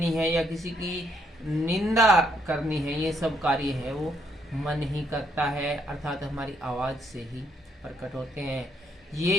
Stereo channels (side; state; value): both; normal; correlation 0.72